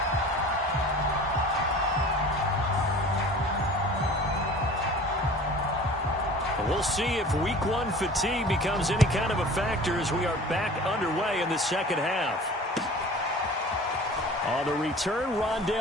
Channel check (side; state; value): both; normal; correlation 0.43